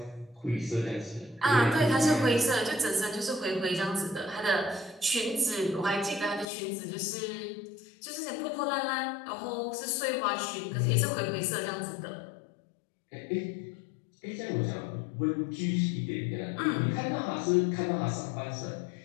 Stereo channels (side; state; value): right; drops out; at 6.5 s